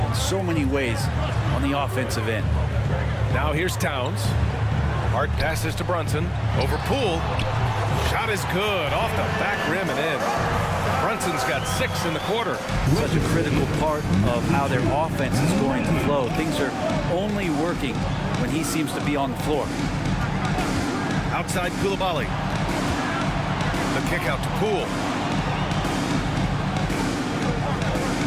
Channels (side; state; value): both; identical; correlation 1.00